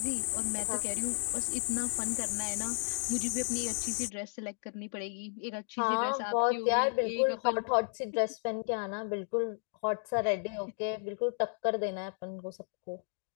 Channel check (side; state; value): right; silent; 55 dB below the other